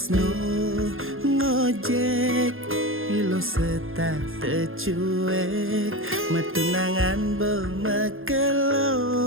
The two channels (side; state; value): left; late; 0.60 ms